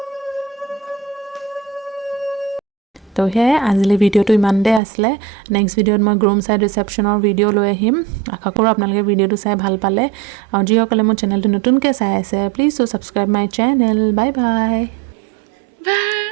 তো সেয়াই আজিলৈ ভিডিঅ'টো ইমানতে আছিলে। নেক্সট ভিডিঅ'ত মই গ্ৰুম চাইড ৰিচেপশ্যনৰ ভিডিঅ' লৈ আহিম। আশা কৰোঁ আপোনালোকে ভিডিঅ'টো চাই ভাল পালে। আৰু যিসকলে মোৰ চেনেলটো নতুনকৈ চাই আছে, please to subscribe my channel. Bye bye.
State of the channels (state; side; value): drops out; left; at 4.8 s